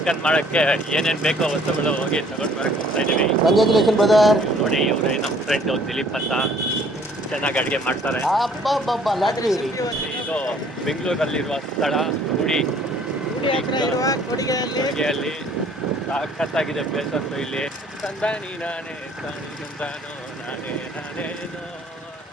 ಮಾಡೋಕ್ಕೆ ಏನೇನು ಬೇಕೋ ವಸ್ತುಗಳು ಹೋಗಿ ತಗೊಂಡು ಬರಕ್ಕೆ ಹೋಗ್ತಾ ಇದ್ದೀವಿ. Congratulation brother. ನೋಡಿ ಇವರೇ ನಮ್ಮ ಫ್ರೆಂಡು ದಿಲೀಪ್ ಅಂತ, ಚೆನ್ನಾಗಿ ಅಡುಗೆ ಮಾಡ್ತಾರೆ. ಲಾಟ್ರಿ. ಇದು ಬೆಂಗಳೂರಲ್ಲಿರುವ ಸ್ಥಳ ಕೊಡಿಗೆಯಲ್ಲಿ ಸಖತ್ತಾಗಿದೆ ಪ್ಲೇಸ್ ಅಂತೂ. ಇಲ್ಲಿ ತಂದಾನಿ ನಾನೇ ತಾನಿ ತಂದಾನೋ ನಾನೇ ನಾನೇನೋ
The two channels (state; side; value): normal; both; correlation 0.58